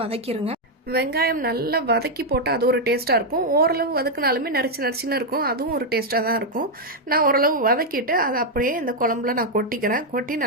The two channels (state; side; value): normal; both; correlation 0.00